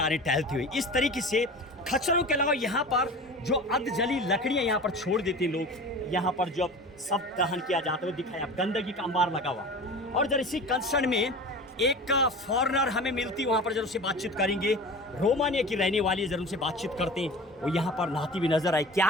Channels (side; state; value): both; normal; correlation 0.36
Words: रहे टहलते हुए। इस तरीके से खच्चरों के अलावा यहाँ पर जो अर्धजली लकड़ियाँ यहाँ पर छोड़ देते हैं लोग, यहाँ पर जब सब दहन किया जाता है, दिखाया गंदगी का अंबार लगा हुआ। और जरा इसी कंसर्न में एक फॉरेनर हमें मिलती, वहाँ पर जरूर से बातचीत करेंगे। रोमानिया की रहने वाली है, जरूर से बातचीत करते हैं। वो यहाँ पर नहाती हुई नजर आए,